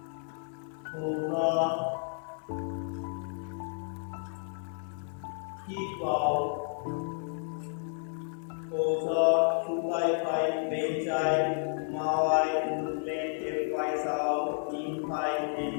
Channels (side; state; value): right; silent; digital silence